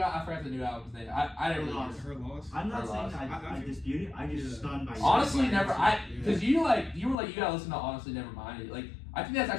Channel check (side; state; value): right; drops out; at 7.2 s